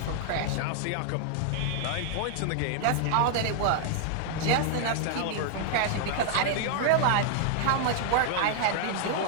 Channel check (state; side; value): different; both; correlation -0.01